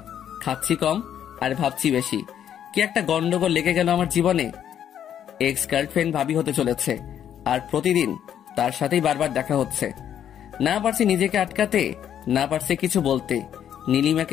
খাচ্ছি কম আর ভাবছি বেশি। কি একটা গন্ডগোল লেগে গেল আমার জীবনে। এক্স গার্লফ্রেন্ড ভাবি হতে চলেছে, আর প্রতিদিন তার সাথেই বারবার দেখা হচ্ছে। না পারছি নিজেকে আটকাতে, না পারছি কিছু বলতে।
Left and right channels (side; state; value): right; quieter; 9.8 dB